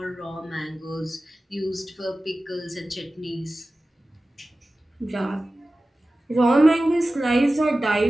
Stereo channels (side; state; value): both; normal; correlation 0.96